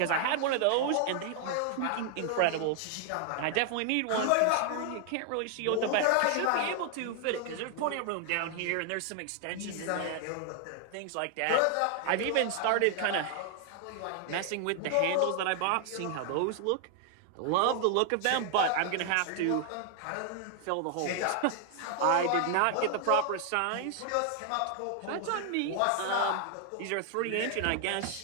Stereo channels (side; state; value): both; different; correlation 0.00